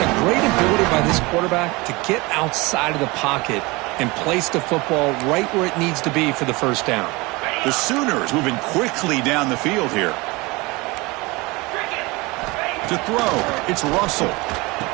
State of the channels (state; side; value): quieter; left; 24.0 dB